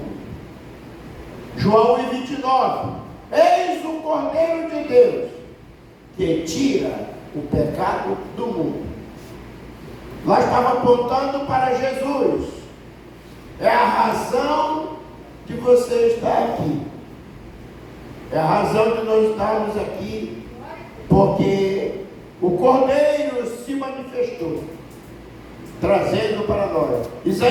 João 1,29, eis o Cordeiro de Deus, que tira o pecado do mundo. Lá estava apontando para Jesus. É a razão de você estar aqui. É a razão de nós estarmos aqui, porque o Cordeiro se manifestou, trazendo para nós.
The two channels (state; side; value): identical; both; correlation 1.00